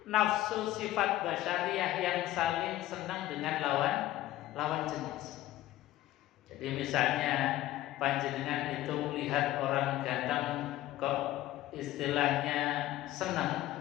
sifat basyariah yang saling senang dengan lawan jenis. Jadi misalnya panjenengan itu melihat orang ganteng kok istilahnya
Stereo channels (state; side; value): quieter; right; 14.9 dB